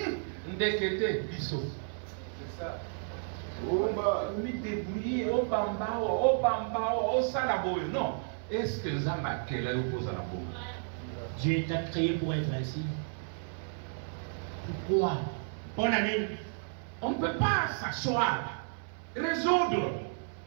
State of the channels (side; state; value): left; silent; 56 dB below the other